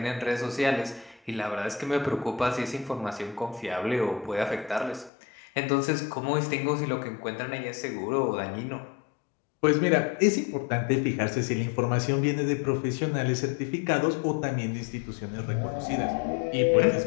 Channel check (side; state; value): right; drops out; at 5.1 s